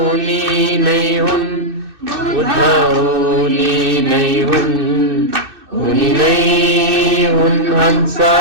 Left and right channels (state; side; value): late; left; 2.6 ms